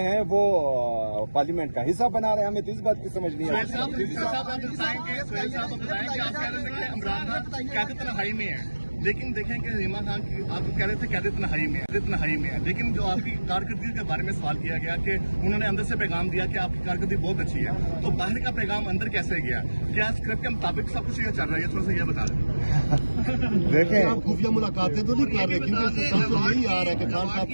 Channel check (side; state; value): both; inverted; correlation -1.00